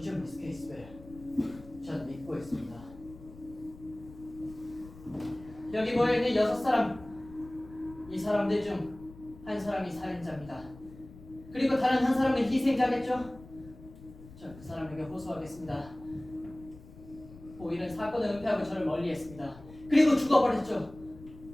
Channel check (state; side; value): noise; left; rumble, 19 dB below the sound